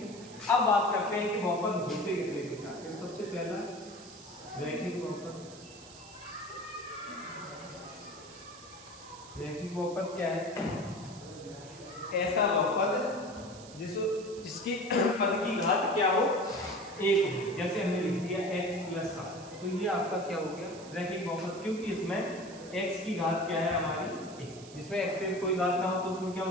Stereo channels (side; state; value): right; noise; hiss, 18 dB below the sound